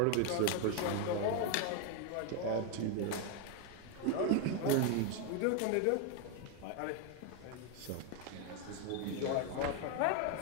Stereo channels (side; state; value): both; different; correlation 0.01